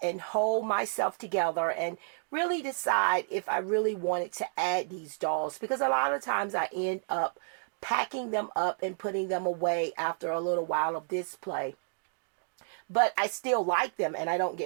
and hold myself together and really decide if I really wanted to add these dolls, because a lot of times I end up packing them up and putting them away after a little while of display. But I still like them and I don't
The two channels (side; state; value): left; silent; digital silence